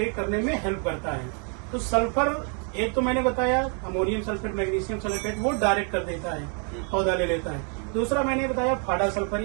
करने में हेल्प करता है। तो सल्फर एक तो मैंने बताया अमोनियम सल्फेट, मैग्नीशियम सल्फेट, वो डायरेक्ट कर देता है, पौधा ले लेता है। दूसरा मैंने बताया फाड़ा सल्फर,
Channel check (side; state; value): left; quieter; 39.8 dB